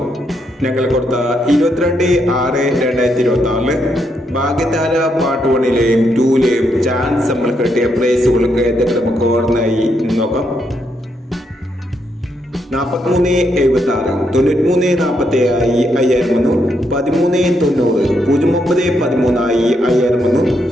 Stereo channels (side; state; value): both; normal; correlation 0.78